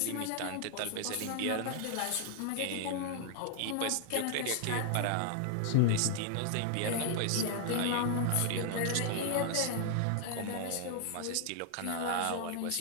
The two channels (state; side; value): different; both; correlation 0.00